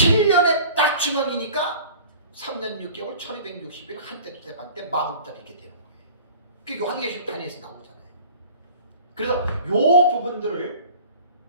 딱 중앙이니까 3년 6개월 1260일 한때 두때 반때 40달 이렇게 되는 거예요. 그게 요한계시록 단위에서 나오잖아요. 그래서 요 부분들을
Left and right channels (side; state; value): both; inverted; correlation -0.44